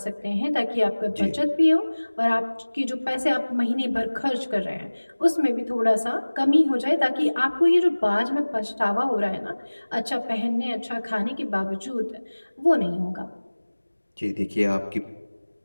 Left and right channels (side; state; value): both; inverted; correlation -1.00